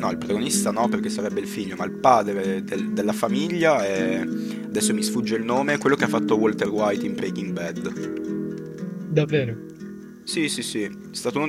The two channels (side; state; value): both; identical; correlation 1.00